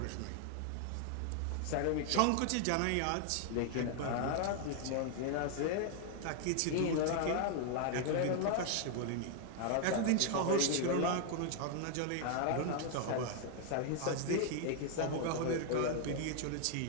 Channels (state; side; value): different; both; correlation 0.00